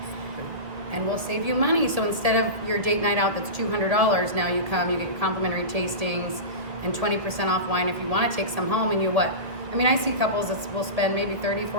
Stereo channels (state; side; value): late; left; 1.8 ms